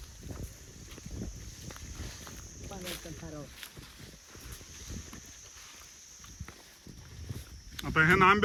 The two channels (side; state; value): both; identical; correlation 1.00